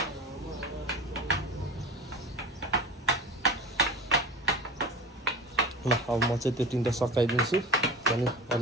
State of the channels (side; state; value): both; normal; correlation 0.33